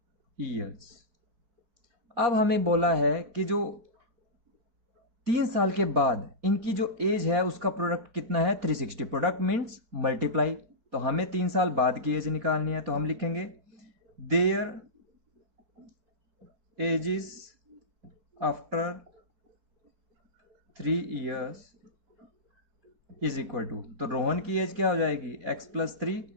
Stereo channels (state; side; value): late; left; 4.2 ms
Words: years. अब हमें बोला है कि जो 3 साल के बाद इनकी जो एज है उसका प्रोडक्ट कितना है, 360। प्रोडक्ट मीन्स मल्टीप्लाई, तो हमें 3 साल बाद की एज निकालनी है। तो हम लिखेंगे their ages after 3 years is equal to, तो रोहन की एज क्या हो जाएगी, x प्लस 3,